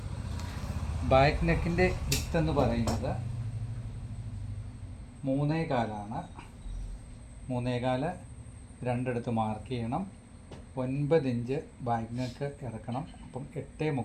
ബാക്ക് നെക്കിൻ്റെ വിത്ത് എന്ന് പറയുന്നത് 3.25. 3.25 രണ്ടിടത്ത് മാർക്ക് ചെയ്യണം. 9 ഇഞ്ച് ബാക്ക് നെക്ക് ഇറക്കണം. അപ്പം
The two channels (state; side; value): identical; both; correlation 1.00